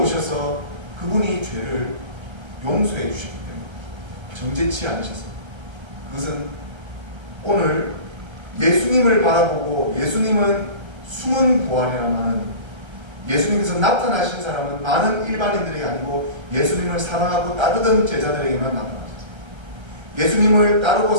그분이 죄를 용서해 주시기 때문에 정죄치 않으셨습니다. 그것은 오늘 예수님을 바라보고, 예수님은 숨은 부활이라마는, 예수님께서 나타나신 사람은 많은 일반인들에게 아니고 예수님을 사랑하고 따르던 제자들에게만 나타나셨어요. 예수님을 따르고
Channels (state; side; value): late; left; 1.3 ms